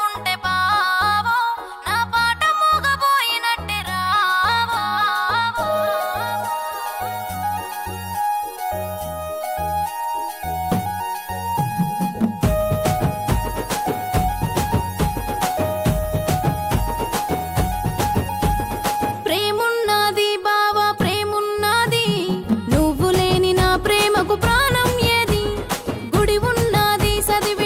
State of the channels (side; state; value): both; identical; correlation 1.00